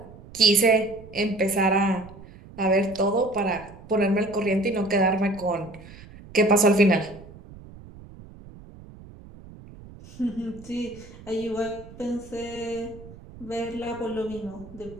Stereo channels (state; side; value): noise; right; rumble, 19 dB below the sound